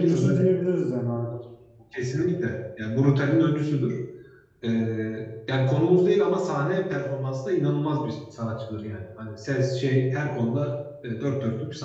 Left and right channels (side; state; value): both; identical; correlation 1.00